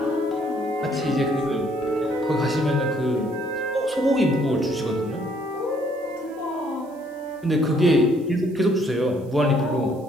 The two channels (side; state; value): right; noise; hiss, 30 dB below the sound